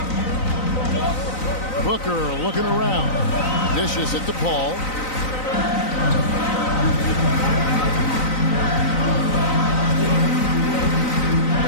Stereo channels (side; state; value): right; late; 3.9 ms